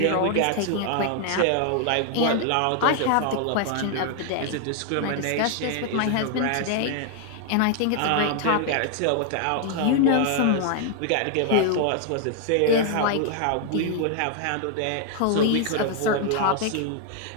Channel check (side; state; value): both; different; correlation 0.00